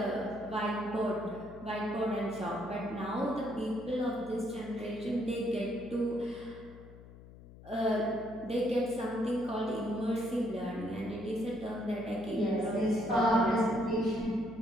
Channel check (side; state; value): left; noise; hum, 18 dB below the sound